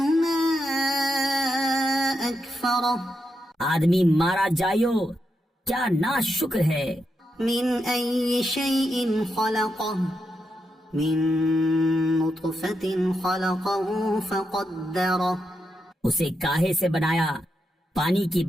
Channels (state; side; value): normal; both; correlation 0.84